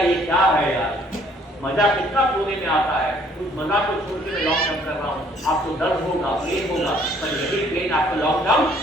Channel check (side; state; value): both; normal; correlation 0.61